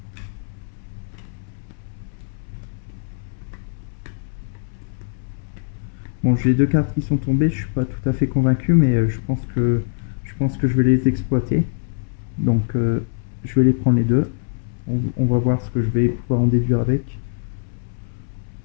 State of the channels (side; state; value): right; silent; 64 dB below the other